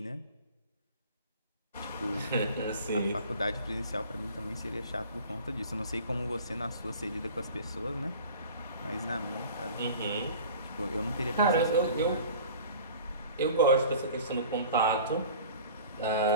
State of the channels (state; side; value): inverted; both; correlation -0.42